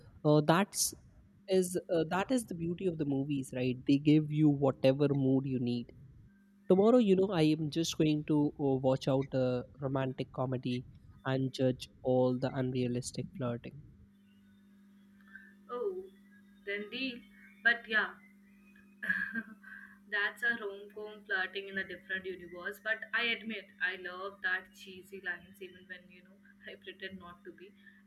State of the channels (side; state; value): both; identical; correlation 1.00